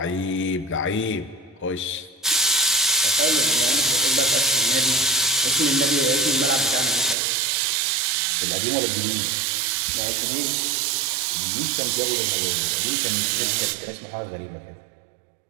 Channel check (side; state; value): left; drops out; at 7.2 s